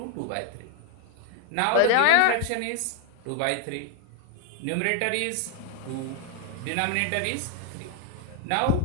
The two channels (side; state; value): both; different; correlation 0.00